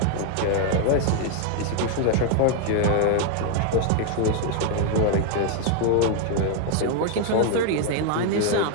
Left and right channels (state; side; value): different; both; correlation 0.00